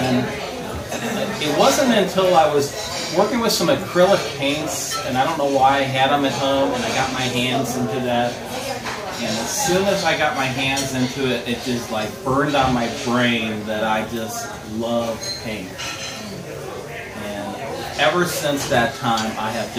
it wasn't until I was working with some acrylic paints, and I don't know why I had them at home, and I got my hands into that. And as soon as I got my hands into it, it just like burned on my brain that I just love paint. And ever since that time, I have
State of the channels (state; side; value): identical; both; correlation 1.00